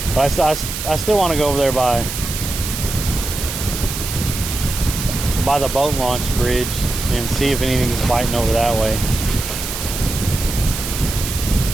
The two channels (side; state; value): right; noise; hiss, 6 dB below the sound